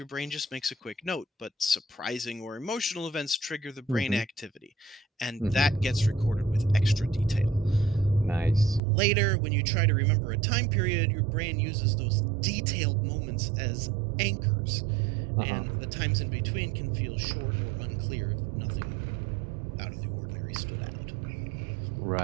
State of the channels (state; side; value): drops out; left; at 8.8 s